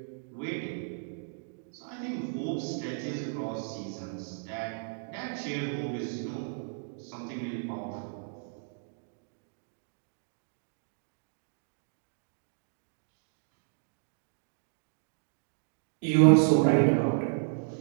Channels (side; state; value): left; silent; digital silence